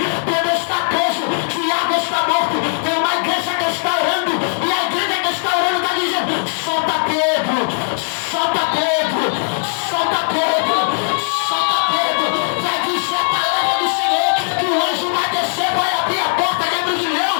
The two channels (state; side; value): silent; right; 66 dB below the other